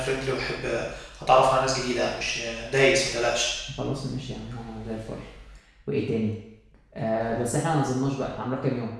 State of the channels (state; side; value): identical; both; correlation 1.00